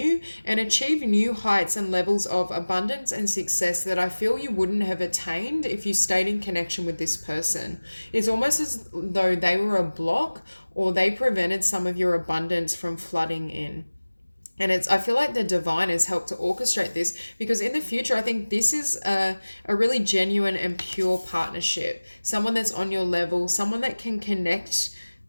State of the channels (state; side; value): inverted; both; correlation -1.00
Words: and achieve new heights and levels of abundance and success that I feel you wouldn't have attained if you stayed in connection with this person. It's almost as though they were a block, or they prevented some of your abundance from flooding in. And I feel like the divine has helped to orchestrate this, because in the future, I think this is a really genuine and pure partnership. Someone that's on your level, someone that can connect